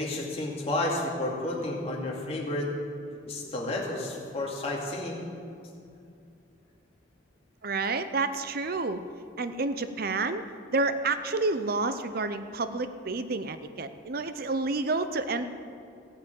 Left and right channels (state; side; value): normal; both; correlation 0.11